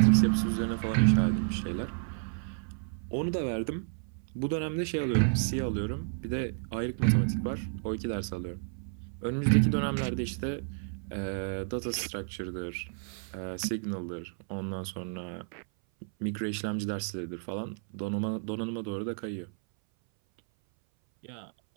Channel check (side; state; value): left; silent; 57 dB below the other